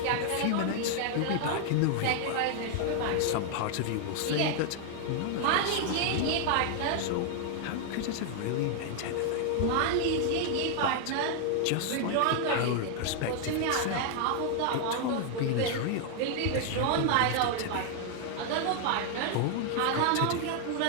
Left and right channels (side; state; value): both; different; correlation 0.00